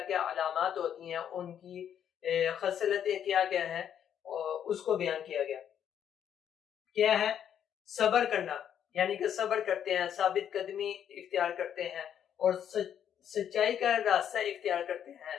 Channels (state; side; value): quieter; right; 9.2 dB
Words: کیا علامات ہوتی ہیں، ان کی خصلتیں کیا کیا ہیں، اس کو بیان کیا گیا۔ کیا ہے؟ صبر کرنا، یعنی کہ صبر کرتے ہیں، ثابت قدمی اختیار کرتے ہیں، اور سچائی کا راستہ اختیار کرتے ہیں،